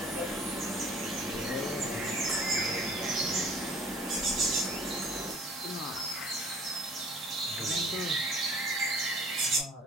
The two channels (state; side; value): normal; both; correlation 0.51